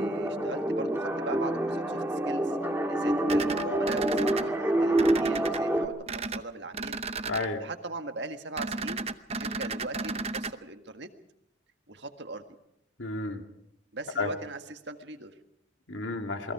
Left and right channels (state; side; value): normal; both; correlation 0.60